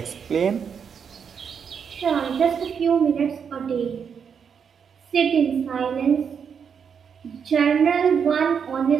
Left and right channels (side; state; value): left; quieter; 6.9 dB